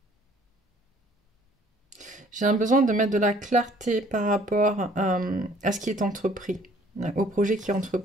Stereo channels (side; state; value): both; normal; correlation 0.57